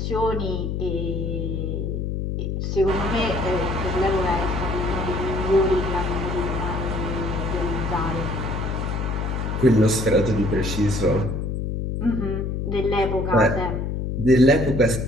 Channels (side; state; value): left; noise; hum, 2 dB below the sound